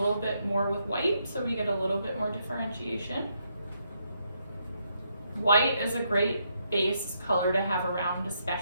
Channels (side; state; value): both; inverted; correlation -0.77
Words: bit more with white so we get a little bit more differentiation. White is a great base color to have around,